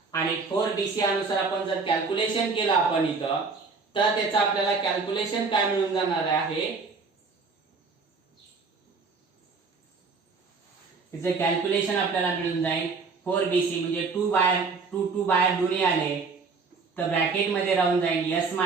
आणि 4bc अनुसार आपण जर कॅल्क्युलेशन केलं आपण इथं तर त्याचं आपल्याला कॅल्क्युलेशन काय मिळून जाणार आहे त्याचं कॅल्क्युलेशन आपल्याला मिळून जाईल 4BC म्हणजे 2 बाहेर 2 बाहेर दोन्ही आले तर ब्रॅकेट मध्ये राहून जाईल S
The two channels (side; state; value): left; quieter; 4.5 dB